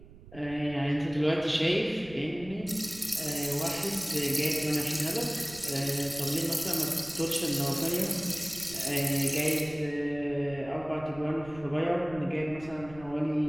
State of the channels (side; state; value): right; noise; rumble, 19 dB below the sound